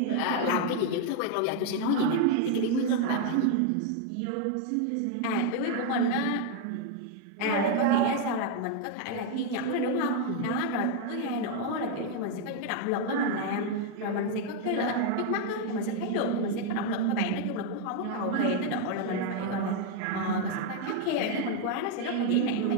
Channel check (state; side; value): different; both; correlation 0.01